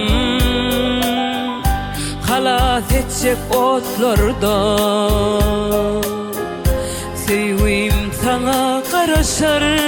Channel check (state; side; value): identical; both; correlation 1.00